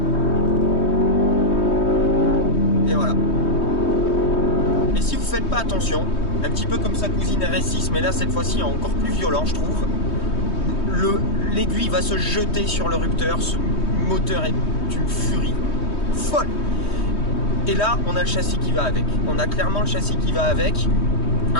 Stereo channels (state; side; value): late; right; 3.2 ms